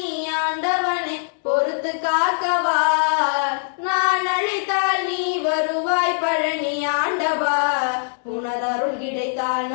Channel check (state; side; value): silent; right; digital silence